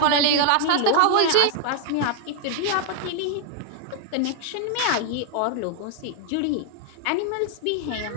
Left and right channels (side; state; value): both; different; correlation 0.00